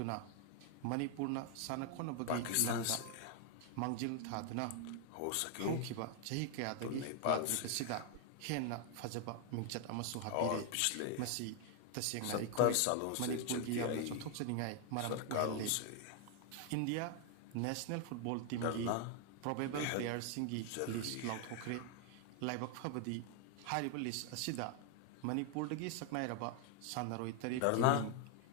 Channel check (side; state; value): both; different; correlation 0.00